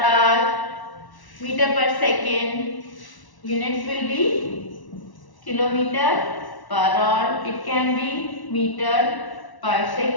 hour, meter per second. Units will be kilometer per hour. It can be meter per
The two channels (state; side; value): late; right; 1.1 ms